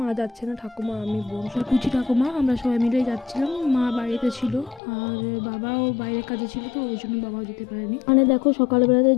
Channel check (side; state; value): right; drops out; at 4.8 s